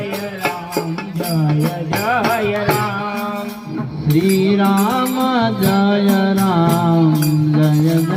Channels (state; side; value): identical; both; correlation 1.00